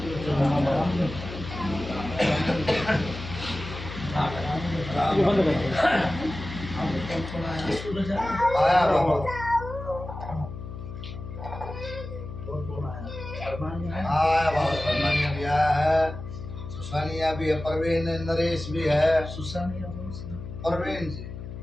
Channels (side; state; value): left; noise; hum, 10 dB below the sound